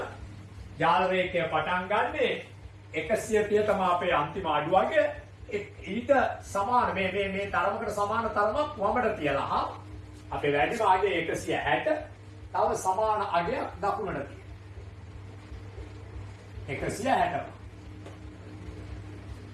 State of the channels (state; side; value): identical; both; correlation 1.00